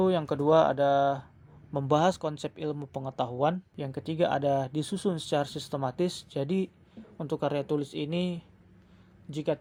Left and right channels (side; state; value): both; identical; correlation 1.00